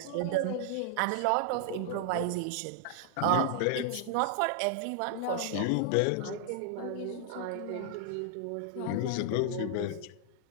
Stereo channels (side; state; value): both; different; correlation 0.00